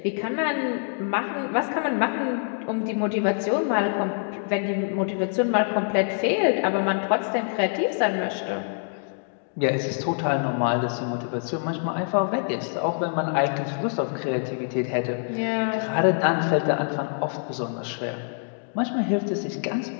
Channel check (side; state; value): right; silent; 61 dB below the other